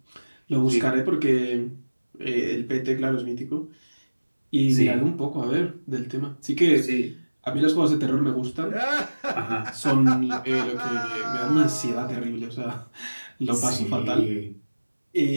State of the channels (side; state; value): both; inverted; correlation -1.00